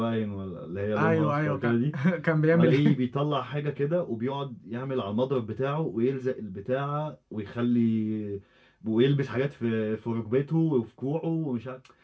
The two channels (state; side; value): identical; both; correlation 1.00